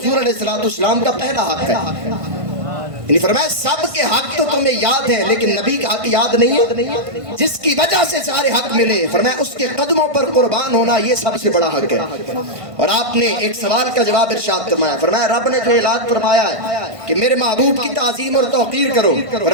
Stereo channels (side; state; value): left; late; 1.5 ms